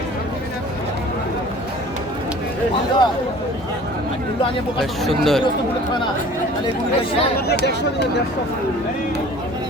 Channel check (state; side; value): normal; both; correlation 0.47